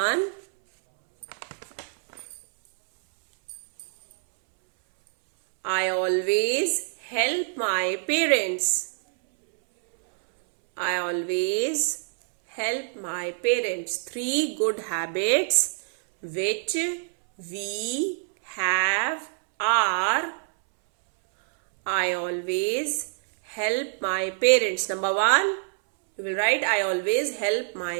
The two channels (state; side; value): silent; left; 61 dB below the other